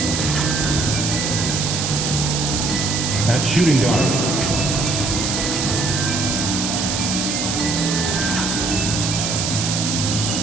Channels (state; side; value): noise; right; hiss, 1 dB below the sound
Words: At shooting guard,